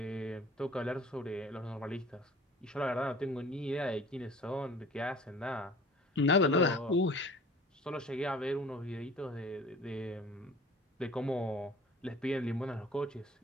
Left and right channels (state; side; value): normal; both; correlation 0.46